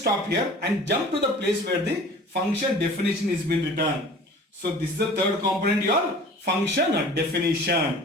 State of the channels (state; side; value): normal; both; correlation 0.44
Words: here and jump to the place where the function definition is been written. So this is the third component, your function